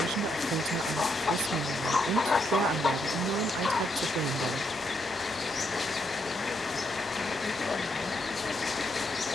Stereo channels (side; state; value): both; normal; correlation 0.77